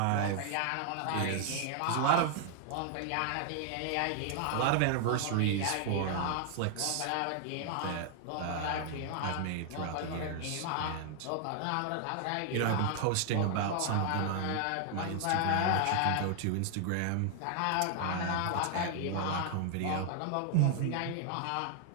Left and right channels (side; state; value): both; different; correlation 0.00